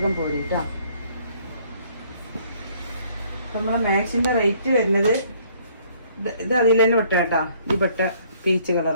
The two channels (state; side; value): inverted; both; correlation -0.62